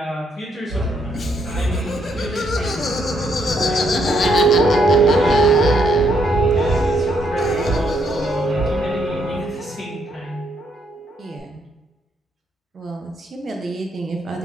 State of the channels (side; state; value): both; normal; correlation 0.73